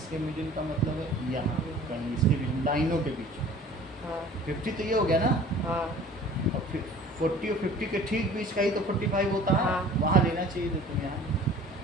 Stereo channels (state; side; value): normal; both; correlation 0.47